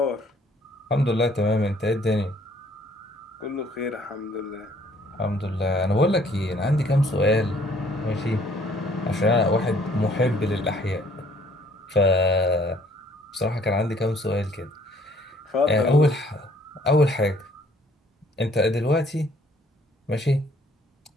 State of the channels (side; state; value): both; normal; correlation 0.61